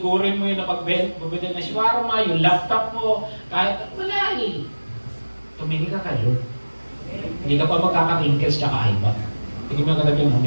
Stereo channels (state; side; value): inverted; both; correlation -1.00